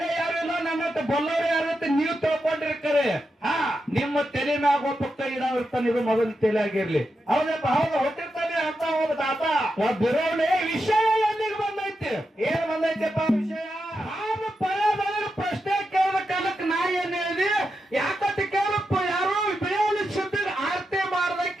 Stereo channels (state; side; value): normal; both; correlation 0.87